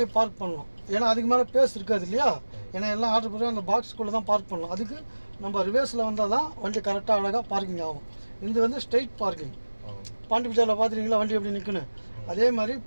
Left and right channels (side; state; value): both; inverted; correlation -1.00